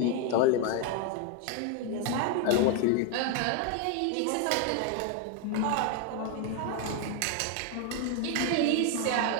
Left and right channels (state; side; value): different; both; correlation 0.01